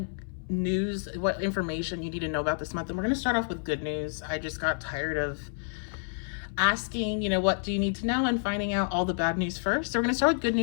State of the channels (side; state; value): right; silent; 58 dB below the other